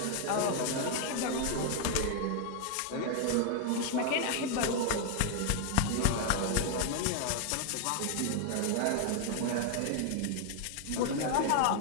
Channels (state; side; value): different; both; correlation 0.00